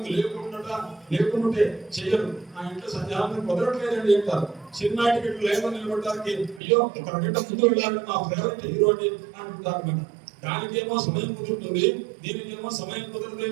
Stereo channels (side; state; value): left; drops out; at 6.6 s